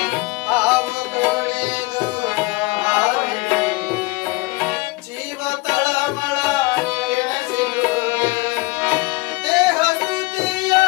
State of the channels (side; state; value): right; quieter; 23.8 dB